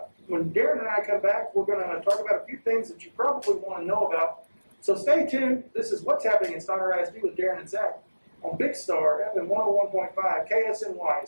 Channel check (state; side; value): inverted; both; correlation -1.00